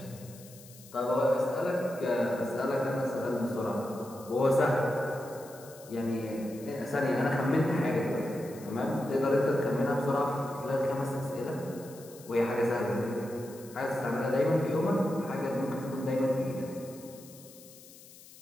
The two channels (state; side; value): noise; left; hiss, 20 dB below the sound